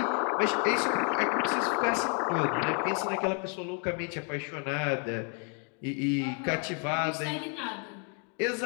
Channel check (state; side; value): quieter; right; 39.3 dB